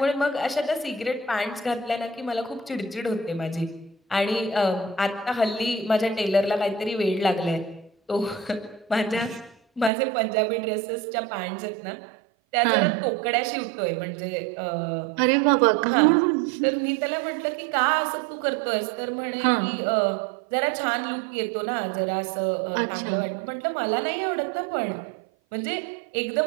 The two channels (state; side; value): drops out; left; at 9.9 s